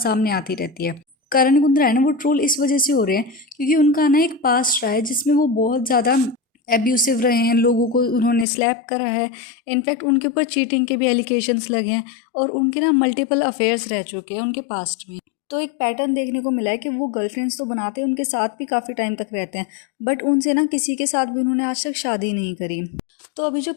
आती रहती है। करण कुंद्रा है ना, वो ट्रोल इस वजह से हो रहे हैं क्योंकि उनका ना एक पास्ट रहा है जिसमें वो बहुत ज़्यादा एब्यूसिव रहे हैं, लोगों को उन्होंने स्लैप करा है। इनफैक्ट उनके ऊपर चीटिंग के भी एलिगेशंस लगे हैं और उनके ना मल्टीपल अफेयर्स रह चुके हैं उनके पास्ट में। तो एक पैटर्न देखने को मिला है कि वो गर्लफ्रेंड्स तो बनाते हैं, उनके साथ भी काफ़ी टाइम तक रहते हैं, बट उनसे ना किसी के साथ भी उन्होंने आज तक शादी नहीं करी। तो अभी जो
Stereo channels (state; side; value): drops out; right; at 8.5 s